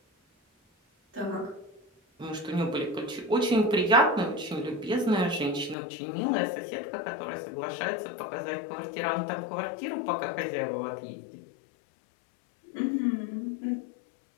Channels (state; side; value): drops out; right; at 5.8 s